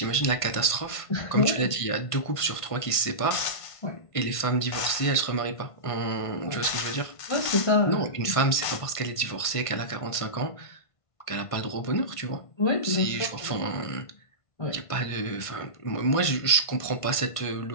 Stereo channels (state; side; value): late; right; 1.5 ms